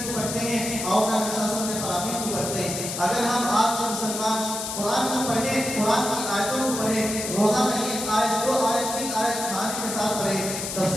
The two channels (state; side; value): noise; left; hiss, 5 dB below the sound